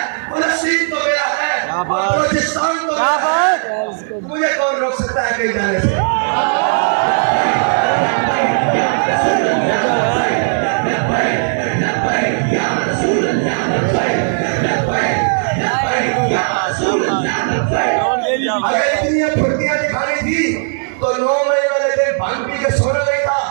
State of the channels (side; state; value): left; silent; 62 dB below the other